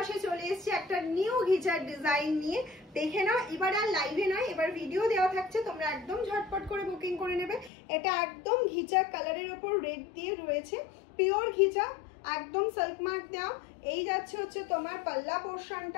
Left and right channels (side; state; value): right; drops out; at 7.7 s